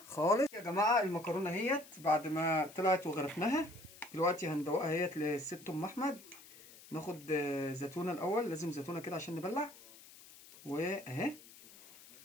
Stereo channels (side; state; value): left; noise; hiss, 20 dB below the sound